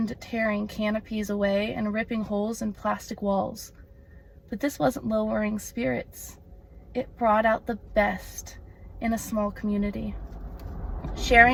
tearing canopies away and ripping holes in plastic walls. But this wasn't lowering spirits. It brought out the best in a small community.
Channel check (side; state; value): both; identical; correlation 1.00